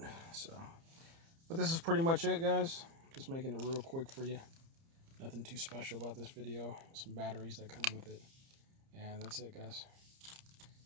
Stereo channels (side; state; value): left; late; 30 ms